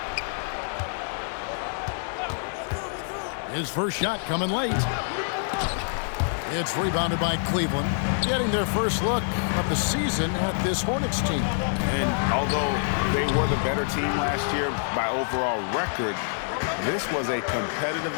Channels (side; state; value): right; silent; digital silence